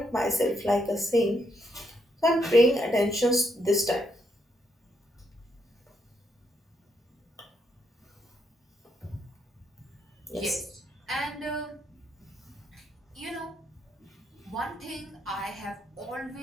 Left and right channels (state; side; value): normal; both; correlation 0.77